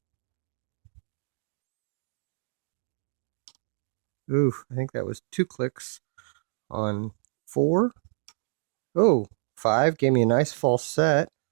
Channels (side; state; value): left; silent; digital silence